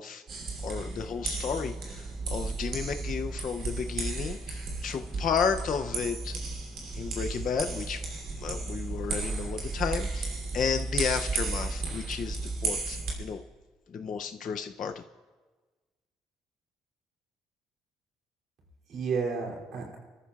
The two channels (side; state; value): both; normal; correlation 0.65